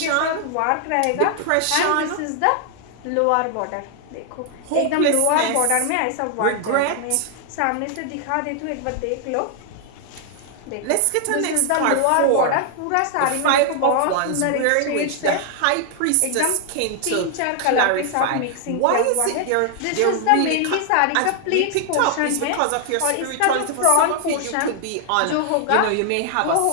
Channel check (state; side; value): different; both; correlation 0.00